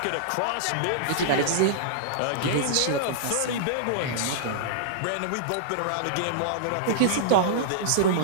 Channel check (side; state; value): both; different; correlation -0.02